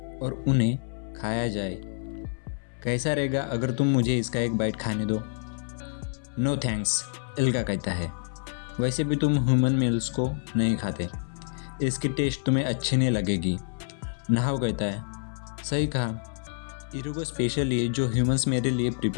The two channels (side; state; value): right; silent; 58 dB below the other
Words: और उन्हें खाया जाए। कैसा रहेगा अगर तुम मुझे इसका एक बाइट खाने दो? नो थैंक्स, एल्गा कहता है, वैसे भी तुम ह्यूमन मेल्स को नहीं खाते, इसकी टेस्ट तुम्हें अच्छी नहीं लगेगी। नाहो कहता है, सही कहा, इरुगो स्पेशली जो ह्यूमंस मेरे लिए